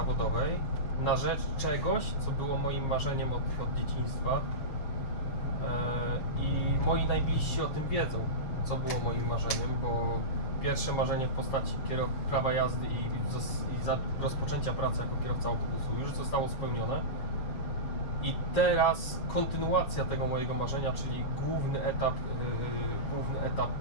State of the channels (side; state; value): right; late; 7.1 ms